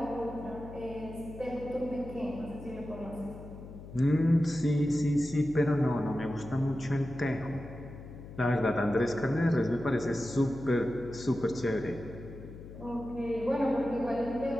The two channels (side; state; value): left; noise; hum, 14 dB below the sound